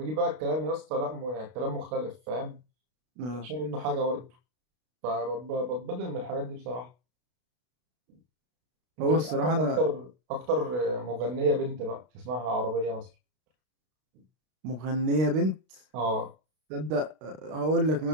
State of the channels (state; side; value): late; left; 32 ms